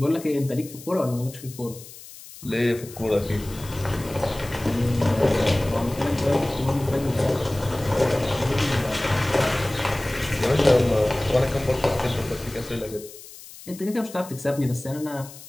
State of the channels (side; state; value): left; noise; hiss, 17 dB below the sound